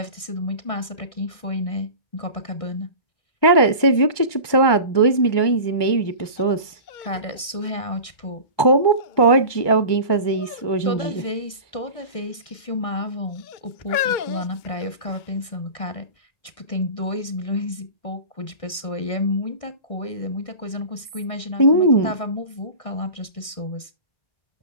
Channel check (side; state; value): right; late; 1.6 ms